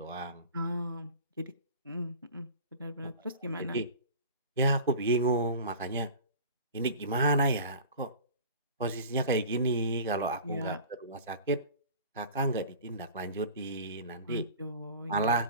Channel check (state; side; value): inverted; both; correlation -0.39